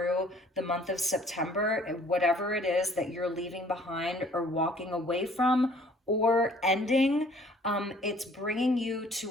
the month of September, whatever it is that you're leaving behind or walking away from or ending. It's bringing you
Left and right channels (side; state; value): both; normal; correlation 0.56